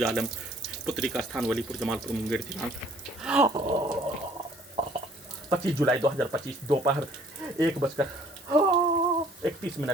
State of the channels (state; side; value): noise; left; hiss, 21 dB below the sound